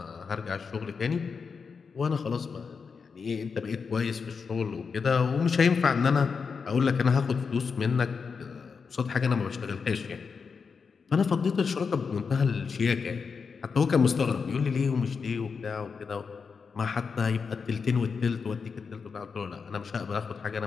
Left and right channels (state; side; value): quieter; right; 5.5 dB